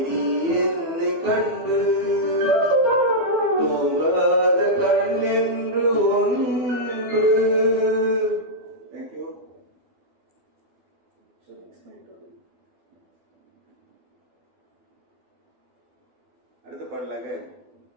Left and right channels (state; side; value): late; left; 12 ms